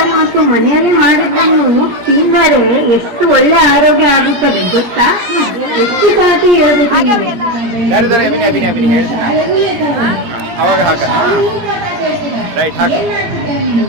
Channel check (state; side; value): late; left; 17 ms